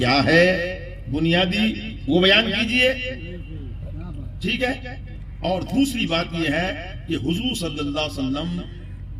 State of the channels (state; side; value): identical; both; correlation 1.00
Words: ہے، بنیادی وہ بیان کیجئے، ٹھیک ہے؟ اور دوسری بات یہ ہے کہ حضور صلی اللہ علیہ وسلم